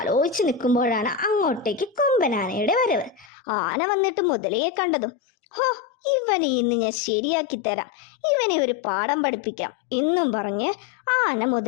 നിൽക്കുമ്പോഴാണ് അങ്ങോട്ടേക്ക് കൊമ്പനാനയുടെ വരവ്. ആന വന്നിട്ട് മുതലയെ കണ്ടതും, ഇവനെ ഇന്ന് ഞാൻ ശരിയാക്കി തരാം, ഇവനെ ഒരു പാഠം പഠിപ്പിക്കാം എന്നും പറഞ്ഞ് ആന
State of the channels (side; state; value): right; drops out; at 3.3 s